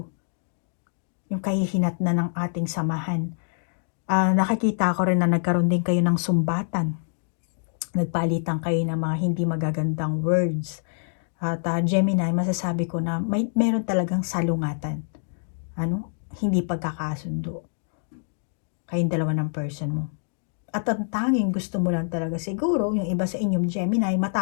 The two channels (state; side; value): silent; right; digital silence